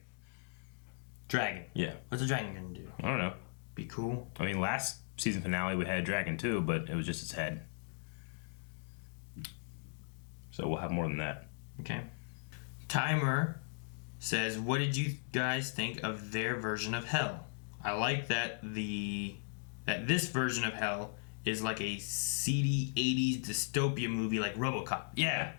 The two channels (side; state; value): right; silent; digital silence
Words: Dragon? Yeah. What's a dragon gonna do? I don't know. Be cool? I mean, last season finale we had a dragon too, but it was just its head. So we'll have more than that. Okay. Timer says, what did you guys think of their version of hell? I like that this version of hell is like a seedy 80s dystopia movie like RoboCop. Yeah,